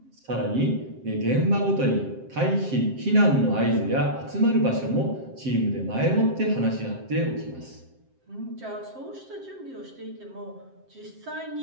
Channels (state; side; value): late; left; 7.6 ms